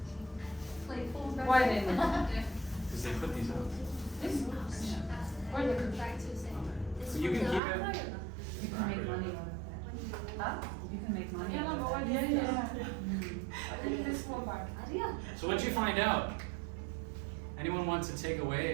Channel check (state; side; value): drops out; left; at 7.6 s